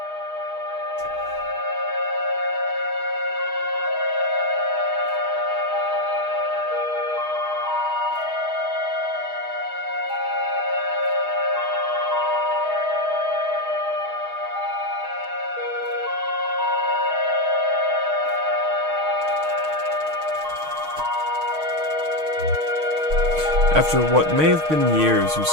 After what may have been years, you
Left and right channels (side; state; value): left; late; 6.4 ms